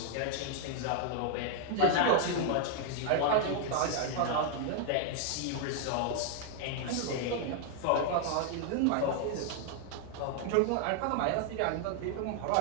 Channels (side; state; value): both; different; correlation 0.00